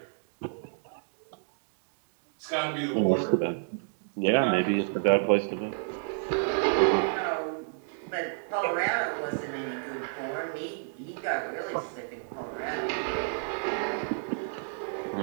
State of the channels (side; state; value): left; silent; digital silence